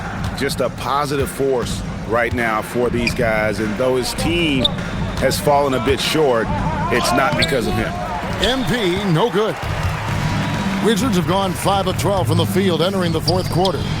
Just a positive force right now for these guys, and though his team has fallen a bit short, it's not because of him. MP, no good. Wizards have gone 5 of 12 from the field entering the 4th quarter.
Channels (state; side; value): identical; both; correlation 1.00